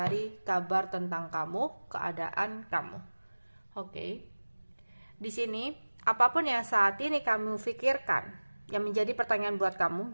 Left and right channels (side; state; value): both; inverted; correlation -1.00